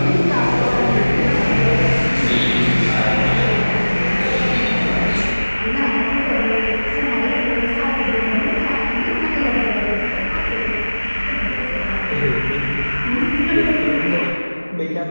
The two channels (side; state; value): both; inverted; correlation -1.00